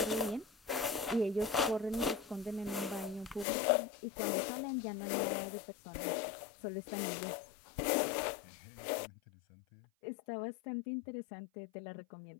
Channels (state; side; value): drops out; right; at 3.5 s